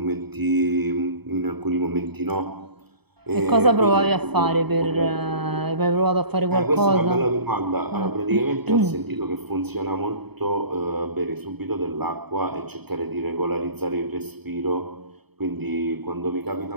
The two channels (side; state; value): left; late; 0.98 ms